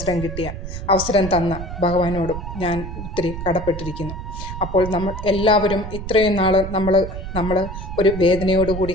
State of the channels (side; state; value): right; noise; rumble, 8 dB below the sound